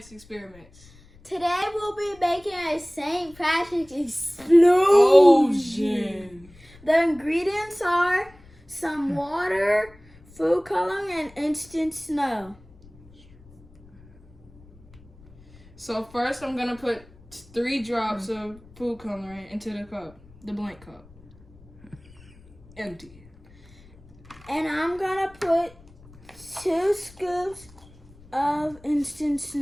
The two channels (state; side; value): noise; left; rumble, 25 dB below the sound